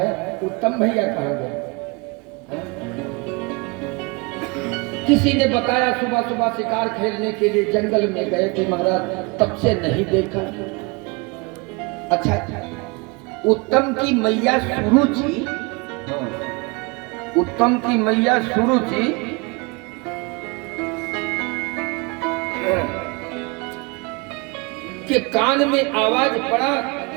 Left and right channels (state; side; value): quieter; left; 28.3 dB